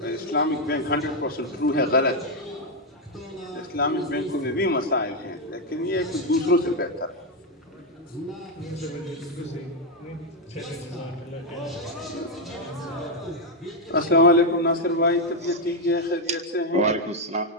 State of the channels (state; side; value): normal; both; correlation 0.03